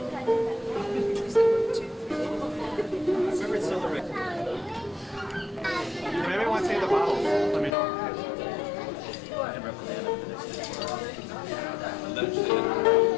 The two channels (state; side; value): drops out; right; at 7.8 s